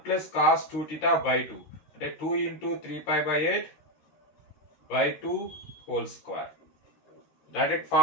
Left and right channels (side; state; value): right; late; 13 ms